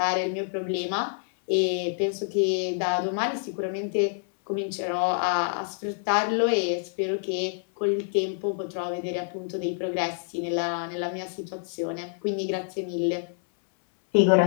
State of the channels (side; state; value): right; silent; 60 dB below the other